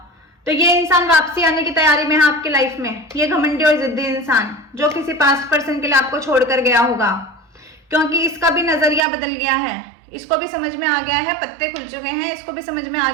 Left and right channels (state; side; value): drops out; left; at 9.0 s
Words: तो ये इंसान वापसी आने की तैयारी में है आपकी लाइफ में, ये घमंडी और जिद्दी इंसान जो किसी पास्ट पर्सन के लिए आपको छोड़कर गया होगा, क्योंकि इसका भी नजरिया बदल गया है, इसको भी समझ में आ गया है, पत्ते खुल चुके हैं, इसको भी समझ में आ